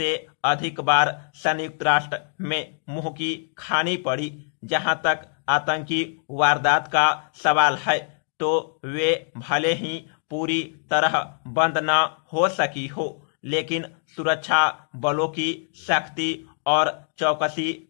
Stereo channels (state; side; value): silent; right; digital silence